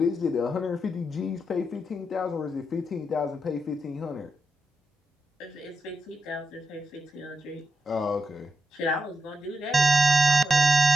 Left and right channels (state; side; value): normal; both; correlation 0.87